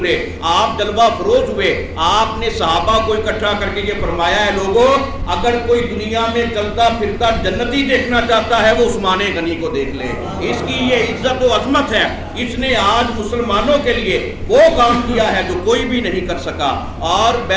آپ جلوہ فروز ہوئے، آپ نے صحابہ کو اکٹھا کر کے یہ فرمایا ہے، لوگوں اگر کوئی دنیا میں چلتا پھرتا جنتی دیکھنا چاہتا ہے وہ عثمان غنی کو دیکھ لے، اس کی یہ عزت و عظمت ہے، اس نے آج مسلمانوں کے لیے وہ کام کیا ہے جو کوئی بھی نہیں کر سکا۔ اور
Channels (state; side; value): identical; both; correlation 1.00